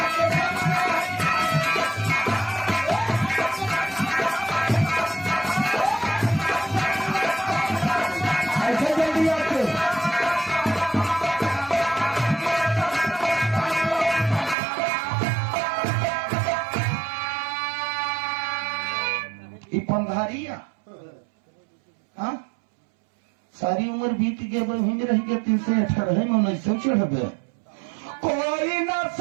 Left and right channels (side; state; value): left; drops out; at 14.6 s